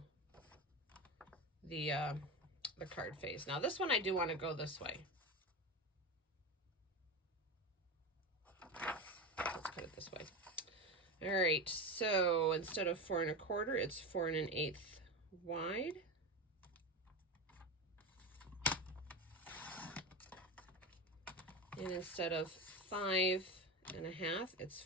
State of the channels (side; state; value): both; normal; correlation 0.21